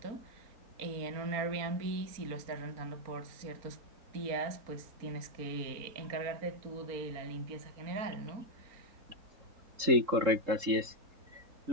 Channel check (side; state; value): left; late; 3.7 ms